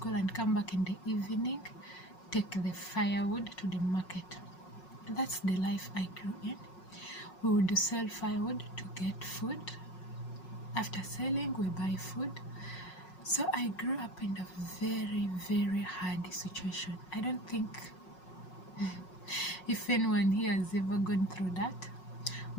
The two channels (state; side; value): late; right; 5.5 ms